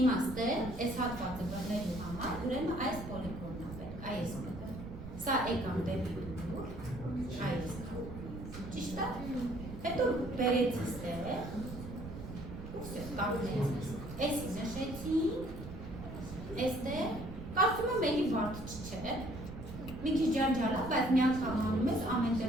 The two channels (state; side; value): noise; right; rumble, 10 dB below the sound